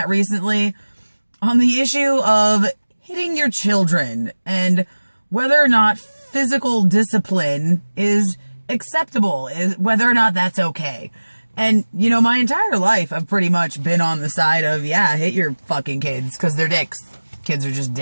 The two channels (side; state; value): both; inverted; correlation -1.00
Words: recently on the issue of hitting your children and whether or not physical discipline is acceptable, whether or not that's okay. And, you know, my entire life I've pretty much been on the side of, yeah, hit your fucking kids because they're dicks. Kids are just